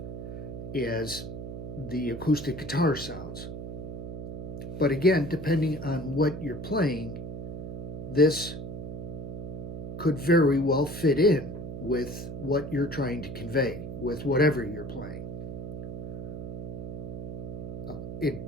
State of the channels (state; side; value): noise; right; hum, 7 dB below the sound